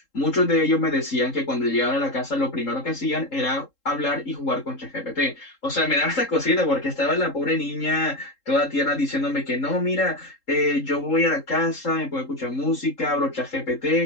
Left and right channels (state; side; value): late; right; 3.7 ms